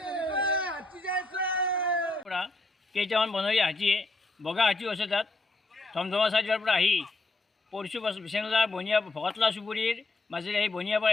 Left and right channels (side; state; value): right; quieter; 3.0 dB